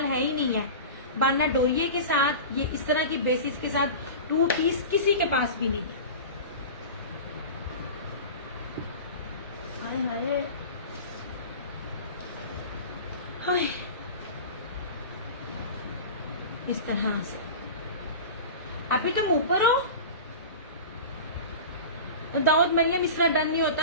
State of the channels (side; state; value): both; inverted; correlation -0.32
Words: है ही नहीं है। बाना डोरिये के साथ ये इस तरह की बेसिस के साथ 2 पीस किसी के पास भी नहीं है। हाय हाय हाय, इस तरह से। अभी तुम ऊपर हो दाऊद मरियम, इस तरह डन नहीं